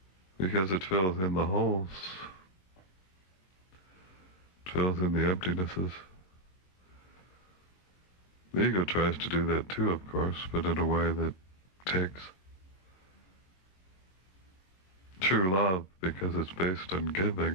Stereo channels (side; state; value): right; late; 22 ms